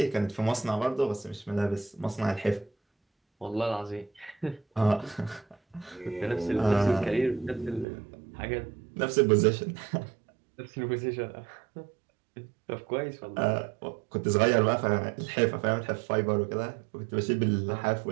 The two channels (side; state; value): left; drops out; at 7.9 s